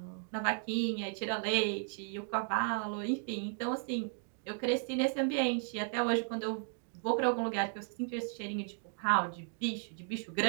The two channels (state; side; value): silent; left; 55 dB below the other